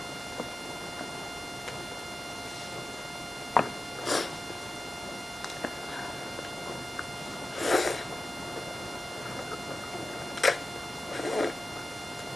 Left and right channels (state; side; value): normal; both; correlation 0.94